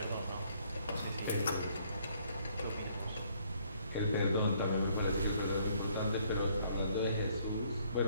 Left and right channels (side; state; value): both; inverted; correlation -0.65